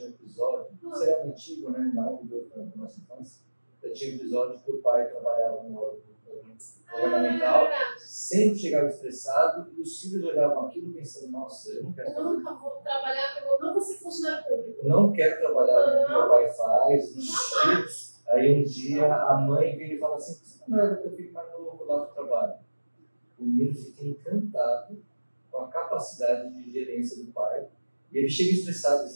um episódio, isso era antigo, né? Maravilhoso da nossa infância. Eu tinha um episódio que o pai trabalhava no órgão governamental, verdade. sempre chegava estressado e os filhos olhavam aquilo pensando, nossa, eu não quero Eu fazer nunca vou trabalhar, eu não vou ser funcionário público. eu não quero trabalhar no que meu pai faz, ixi. Aí um dia a mãe vem e fala assim, por que você não leva teu filho mais novo lá para o trabalho? O menino fica encantado com a capacidade de gerência do pai. E ele chega estressado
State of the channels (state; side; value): inverted; both; correlation -1.00